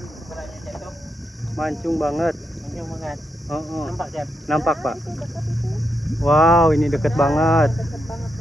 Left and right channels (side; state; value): both; normal; correlation 0.83